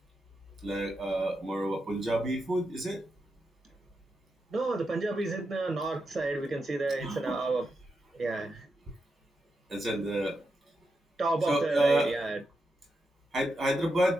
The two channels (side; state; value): both; normal; correlation 0.86